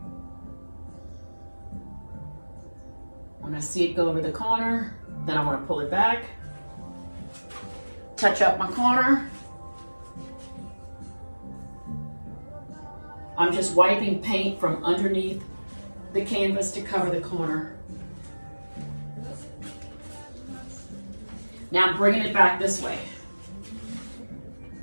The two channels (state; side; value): inverted; both; correlation -1.00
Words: When I see it go over the corner, then I want to pull it back, touch up my corner. I'm just wiping paint from underneath the canvas to cover the corner. Now I'm bringing it back this way.